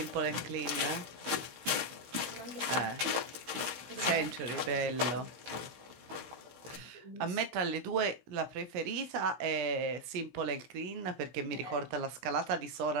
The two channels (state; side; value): late; left; 16 ms